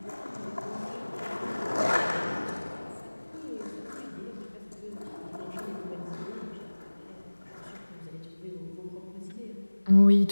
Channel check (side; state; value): both; inverted; correlation -1.00